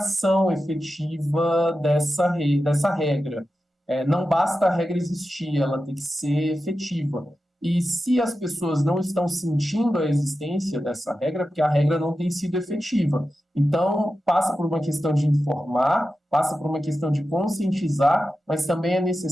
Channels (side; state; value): both; normal; correlation 0.92